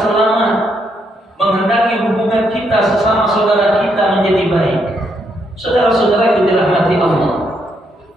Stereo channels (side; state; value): both; normal; correlation 0.76